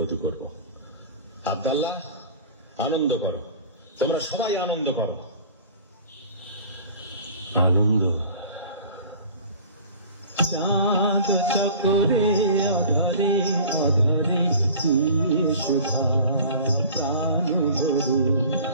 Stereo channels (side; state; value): both; inverted; correlation -0.44